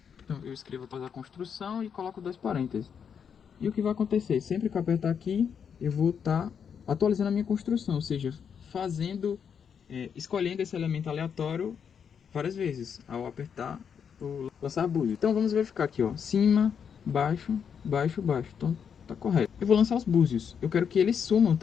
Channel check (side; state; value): right; quieter; 7.3 dB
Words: Então, eu escrevo atualizar a construção e coloco 2 parênteses. E o que vai acontecer? Sempre que eu apertar aqui, eu vou estar atualizando a minha construção, ou seja, escolhendo esse elemento aleatório várias vezes, ao apertar o lançar búzio. Então vamos verificar aqui, ó, cima, baixo, baixo, baixo. Então tá correto. Eu vou lançar os búzios. Eu quero que eles sumam